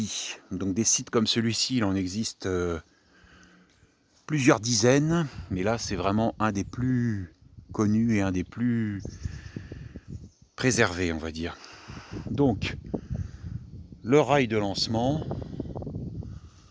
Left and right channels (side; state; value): both; identical; correlation 1.00